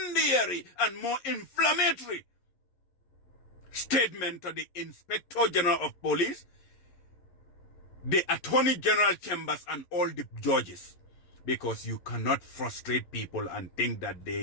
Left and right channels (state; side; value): late; right; 11 ms